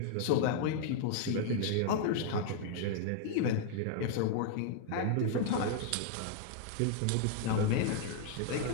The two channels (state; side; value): different; both; correlation -0.01